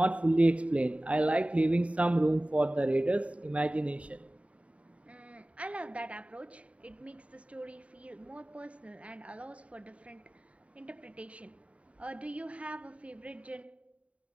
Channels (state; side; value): late; left; 0.065 ms